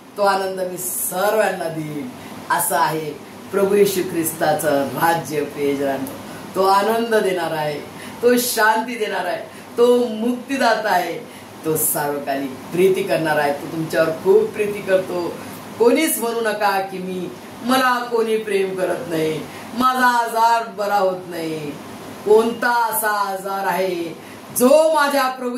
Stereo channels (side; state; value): both; identical; correlation 1.00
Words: तो आनंद मी सर्वांना देईन. असं आहे प्रभू येशू ख्रिस्ताचं राज्य. प्रियजनांनो, तो आनंद देणार आहे, तो शांती देणार आहे, तो मुक्तीदाता आहे, तो सार्वकालिक प्रीती करणार आहे. तो तुमच्यावर खूप प्रीती करतो. कोणीच म्हणू नका की मला कोणी प्रेम करत नाही, माझा आजार बरा होत नाही. कोणता असा आजार आहे जो माझ्या प्रभू